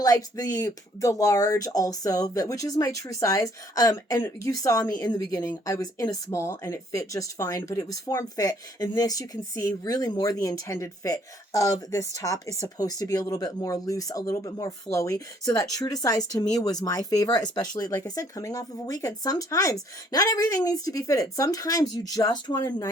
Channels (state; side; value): normal; both; correlation 0.63